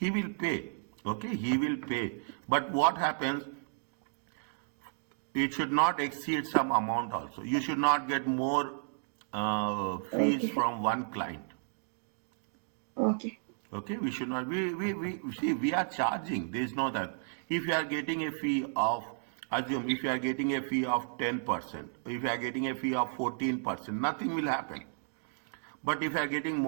will pay. Okay, he will pay. But what happens? It should not exceed some amount also. You should not get more fees Okay. from one client. Okay. Okay, we should not. We see, we are charging. There is no that. If you are getting a fee of, assume if you are getting a fee of 10%, if you are getting a fee of 14%, nothing will happen. But if you are getting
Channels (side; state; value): left; silent; digital silence